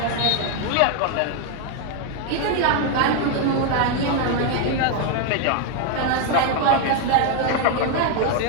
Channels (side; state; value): both; different; correlation 0.01